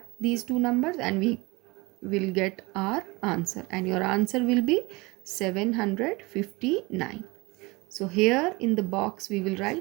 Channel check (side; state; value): left; quieter; 24.5 dB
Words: these two numbers and we will get our answer, and your answer will be 759. So here in the box we will